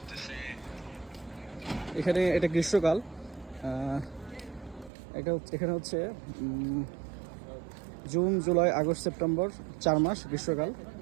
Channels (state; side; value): drops out; left; at 4.9 s